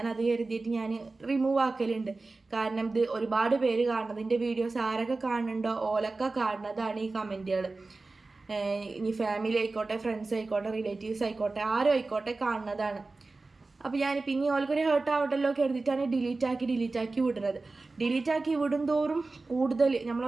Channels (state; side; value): quieter; left; 3.5 dB